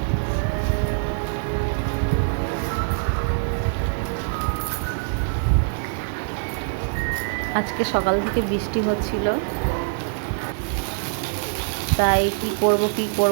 আজকে সকাল থেকে বৃষ্টি হচ্ছিল, তাই কি করব,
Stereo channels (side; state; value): left; silent; digital silence